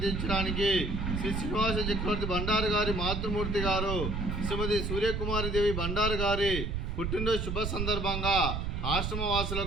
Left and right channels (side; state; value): right; noise; rumble, 2 dB below the sound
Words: తీర్చడానికి శ్రీ శ్రీనివాస చక్రవర్తి బండారు గారి మాతృమూర్తి గారు శ్రీమతి సూర్యకుమారిదేవి బండారు గారి పుట్టినరోజు శుభ సందర్భంగా